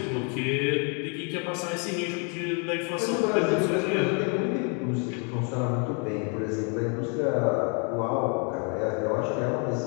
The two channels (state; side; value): quieter; right; 37.4 dB